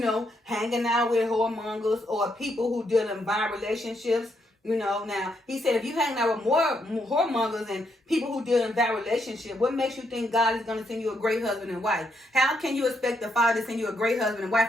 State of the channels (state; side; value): normal; both; correlation 0.77